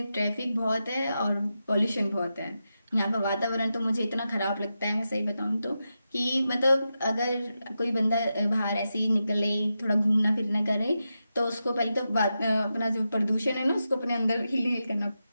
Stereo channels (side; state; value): both; inverted; correlation -0.89